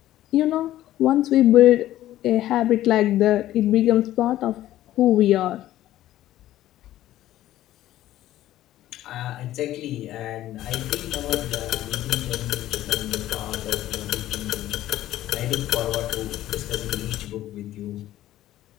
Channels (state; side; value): quieter; right; 13.9 dB